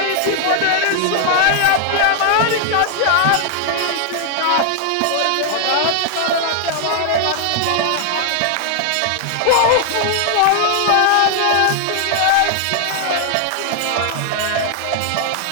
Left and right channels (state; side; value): different; both; correlation 0.00